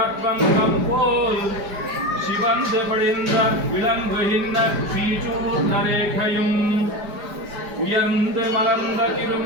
போல் சிவந்து படிந்த விளங்குகின்ற ஸ்ரீசூர்ண ரேகையும் உயர்ந்து மலர்ந்த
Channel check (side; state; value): left; late; 4.9 ms